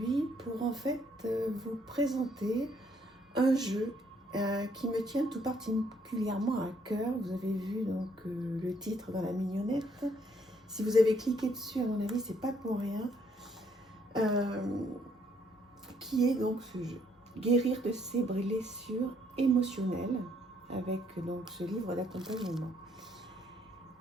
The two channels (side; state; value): both; normal; correlation 0.68